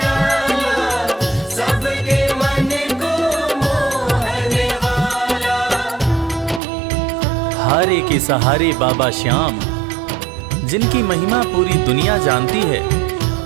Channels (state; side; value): drops out; left; at 6.6 s